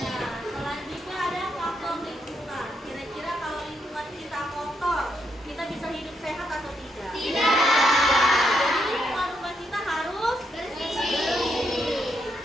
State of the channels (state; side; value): normal; both; correlation 0.78